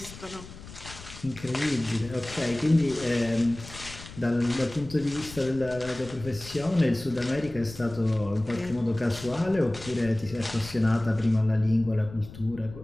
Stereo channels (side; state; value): left; noise; rumble, 15 dB below the sound